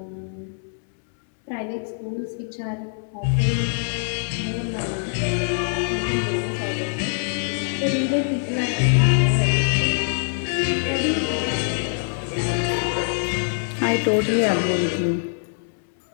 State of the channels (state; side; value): silent; right; digital silence